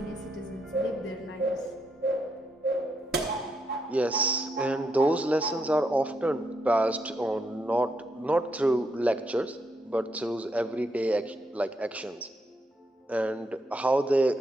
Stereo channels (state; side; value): normal; both; correlation 0.79